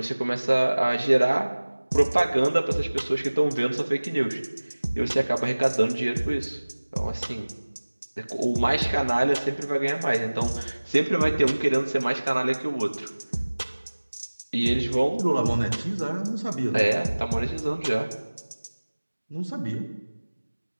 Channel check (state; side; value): inverted; both; correlation -1.00